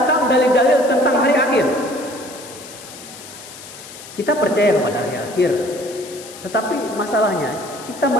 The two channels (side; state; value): left; noise; hiss, 16 dB below the sound